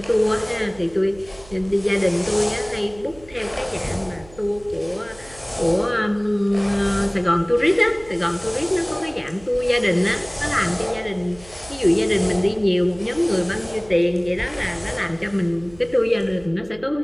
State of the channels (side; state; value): right; noise; hum, 22 dB below the sound